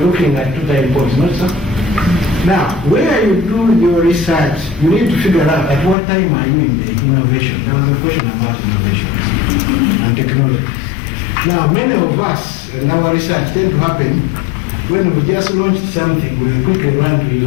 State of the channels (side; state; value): right; drops out; at 6.0 s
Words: looking at 2 time points, not so? Now, where you do your research, you need to figure out at what time are you in the innovation. There was a question about innovation and technology. Now, many of us and our research tend to happen when we just launched something, we quickly run to